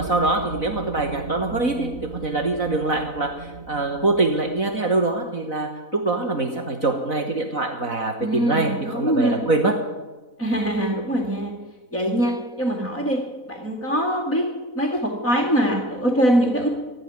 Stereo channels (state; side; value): late; right; 4.0 ms